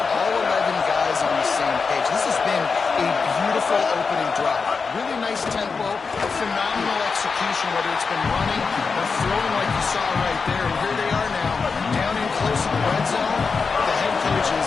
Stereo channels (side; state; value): right; quieter; 5.0 dB